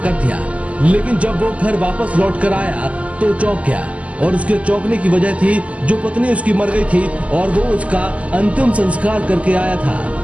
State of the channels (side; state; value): left; late; 0.066 ms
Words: दिया, लेकिन जब वो घर वापस लौट कर आया तो चौंक गया और उसके चौंकने की वजह थी जो पत्नी उसकी मर गई थी और वो उसका अंतिम संस्कार करके आया था,